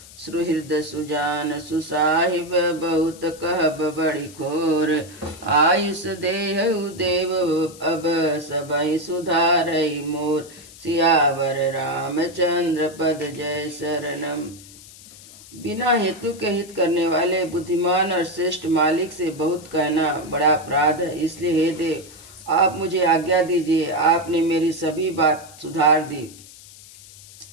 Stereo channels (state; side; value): noise; left; hiss, 20 dB below the sound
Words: सुहृद सुजान सुसाहिब बहुत कहब बड़ी खोर। आयुष देहु देव अब सबई सुधारई मोर। सियावर रामचंद्र पद जय शरणम। बिना हेतु के हित करने वाले बुद्धिमान और श्रेष्ठ मालिक से बहुत कहना बड़ा अपराध है। इसलिए हे देव, आप मुझे आज्ञा दीजिए। आपने मेरी सभी बात सुधार दी।